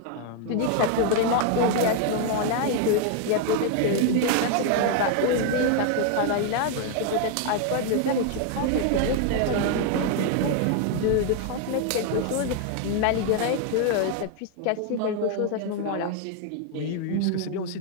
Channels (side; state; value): both; different; correlation 0.00